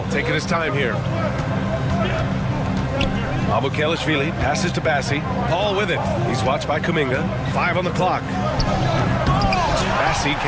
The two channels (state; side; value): identical; both; correlation 1.00